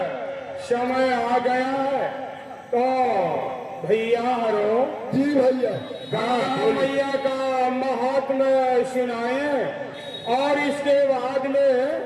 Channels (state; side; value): identical; both; correlation 1.00